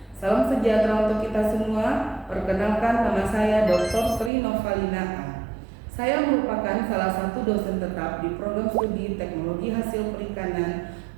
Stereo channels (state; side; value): drops out; left; at 4.3 s